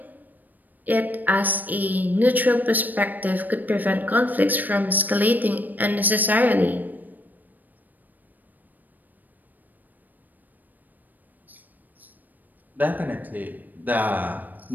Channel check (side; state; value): left; late; 0.086 ms